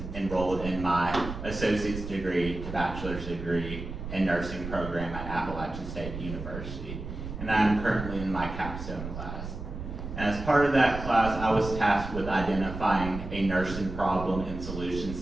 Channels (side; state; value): right; noise; rumble, 8 dB below the sound